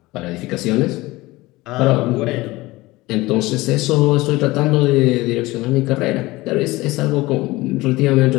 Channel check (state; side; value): quieter; right; 20.1 dB